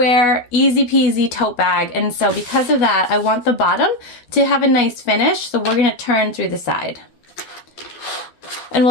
easy peasy tote bag. And so because of that, I want the bottom to have a nice finish. So we're gonna turn through the side. And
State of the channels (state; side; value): late; right; 12 ms